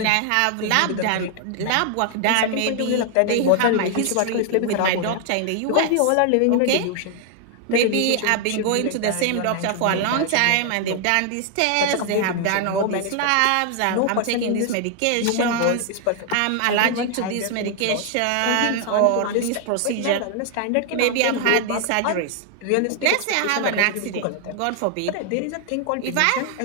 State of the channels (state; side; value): different; both; correlation 0.00